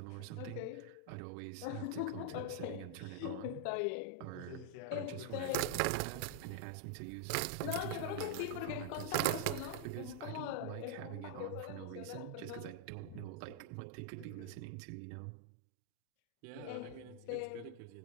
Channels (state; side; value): different; both; correlation -0.01